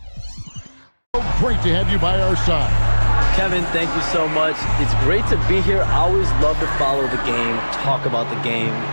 great to have you by our side. Kevin, thank you so much. It's great to be here. I always love to follow the game, talk about the game.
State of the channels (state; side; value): inverted; both; correlation -1.00